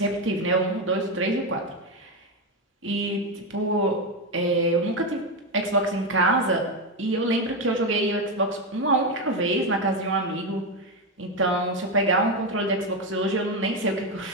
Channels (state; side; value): normal; both; correlation 0.10